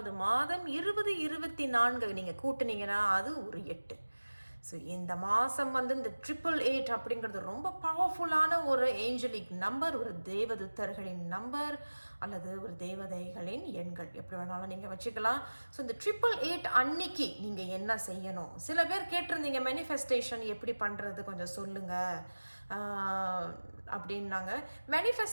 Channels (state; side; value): inverted; both; correlation -1.00